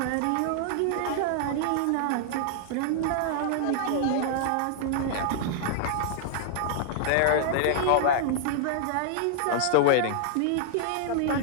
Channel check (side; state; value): both; different; correlation -0.01